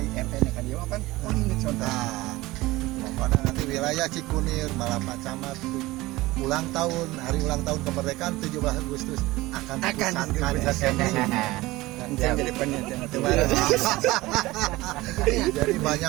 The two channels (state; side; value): quieter; left; 19.5 dB